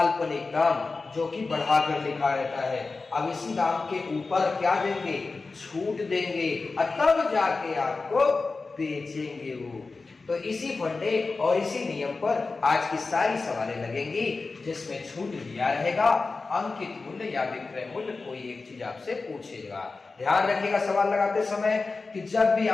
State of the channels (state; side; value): quieter; right; 3.9 dB